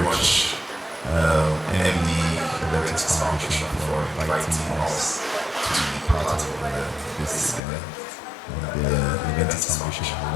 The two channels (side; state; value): right; drops out; at 7.6 s